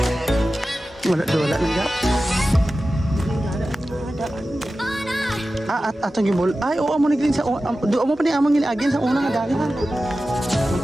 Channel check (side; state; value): both; normal; correlation 0.94